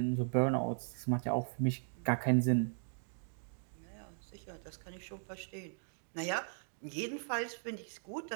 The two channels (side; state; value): left; silent; digital silence